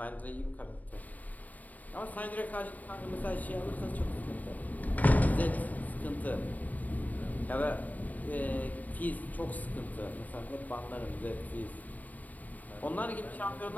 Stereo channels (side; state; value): right; late; 0.077 ms